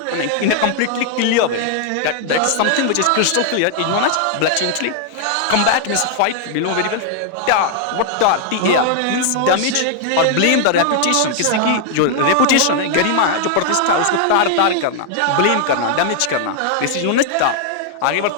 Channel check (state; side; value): different; both; correlation 0.00